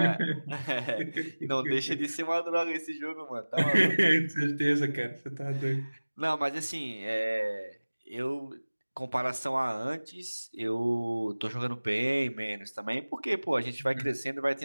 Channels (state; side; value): inverted; both; correlation -1.00